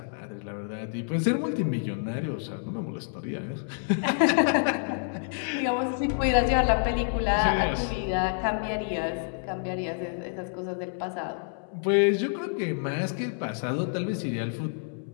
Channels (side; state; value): right; silent; 59 dB below the other